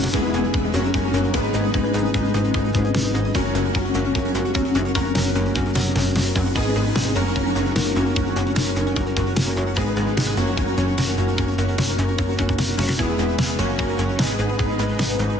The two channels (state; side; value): normal; both; correlation 0.68